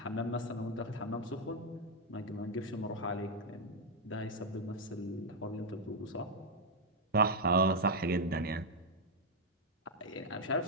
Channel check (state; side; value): normal; both; correlation 0.00